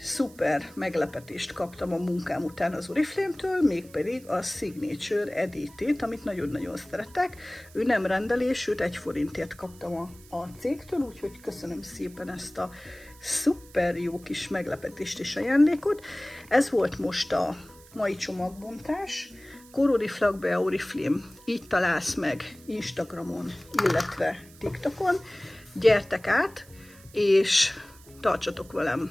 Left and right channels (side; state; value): right; noise; hiss, 23 dB below the sound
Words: szuper meglepetést kaptam a munkám után az Oriflame-től, mégpedig a Signature edétét, amit nagyon-nagyon szeretek. Ő nem rendelés, őt 1 forintért kaptam a cégtől, úgyhogy köszönöm szépen ezt a szuper jó kis meglepetést és ajándékot. Ez volt most a mai csomagbontás. Oriflame Oriflame, így találsz meg Instagramon, illetve TikTokon. Gyertek át, és tartsatok